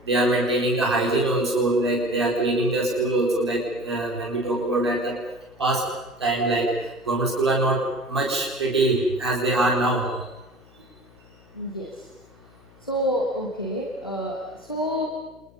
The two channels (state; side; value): noise; left; hum, 26 dB below the sound